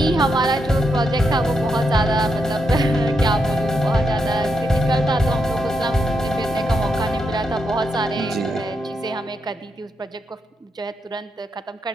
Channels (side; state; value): both; normal; correlation 0.82